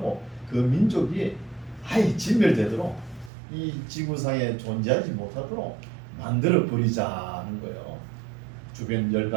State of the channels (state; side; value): drops out; left; at 3.3 s